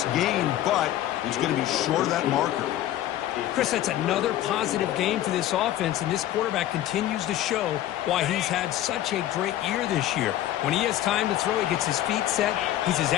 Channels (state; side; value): quieter; right; 13.3 dB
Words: gain, but it's going to be short of that marker. Chris, that's another positive game for this offense, and this quarterback continues to show why he's had such a great year this year. When he has time to throw, he gets his feet set. He's as